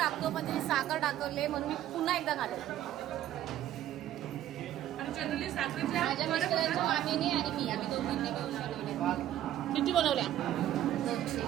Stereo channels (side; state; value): left; quieter; 12.3 dB